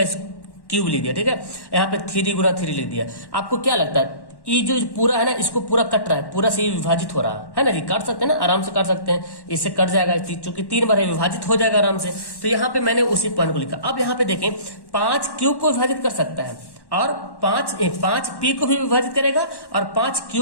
क्यूब लिख दिया, ठीक है। यहाँ पे 3 गुना 3 लिख दिया। आपको क्या लगता है, ये जो पूरा है ना, इसको पूरा कट रहा है, पूरा से विभाजित हो रहा है ना जी, काट सकते हैं ना, आराम से काट सकते हैं, इससे कट जाएगा, चूंकि 3 बार विभाजित हो जाएगा आराम से। तो यहाँ पे मैंने उसी पॉइंट को लिखा। अब यहाँ पे देखें, 5 क्यू को विभाजित कर सकता है, और 5 पी को भी विभाजित करेगा, और 5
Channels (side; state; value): right; late; 1.1 ms